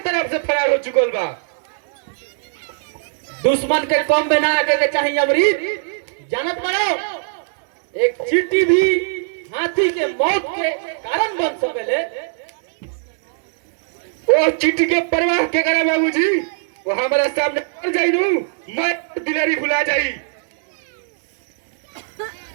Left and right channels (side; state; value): left; silent; digital silence